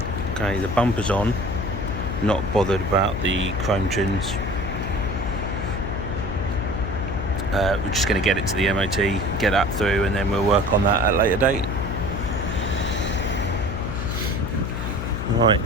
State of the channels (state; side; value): noise; left; hum, 4 dB below the sound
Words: Okay, the bumper's on. Not bothered about the chrome trims. We're just going to get it to the MOT, get that through, and then we'll work on that at a later date. Right,